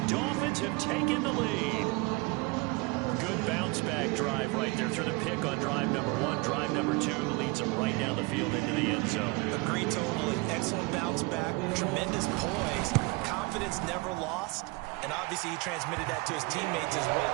Dolphins have taken the lead. Good bounce-back drive right there through the pick on drive number 1. Drive number 2 leads them right down the field into the end zone. Agree totally. Excellent bounce-back, tremendous poise, confidence never lost, and obviously he transmitted that to his teammates as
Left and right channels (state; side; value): quieter; left; 25.9 dB